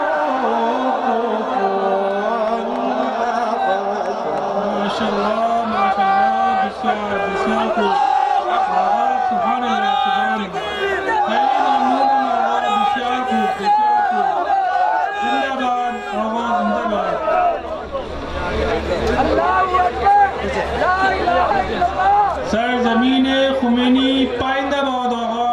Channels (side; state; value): both; identical; correlation 1.00